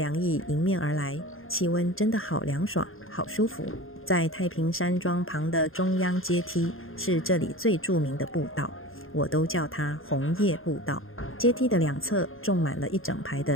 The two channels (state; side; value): late; right; 0.60 ms